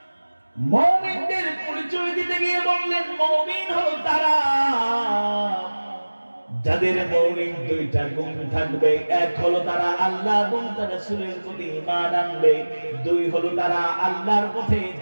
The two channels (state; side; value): inverted; both; correlation -1.00